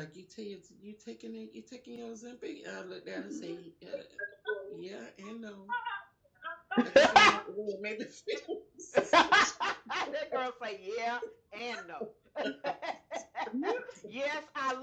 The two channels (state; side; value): identical; both; correlation 1.00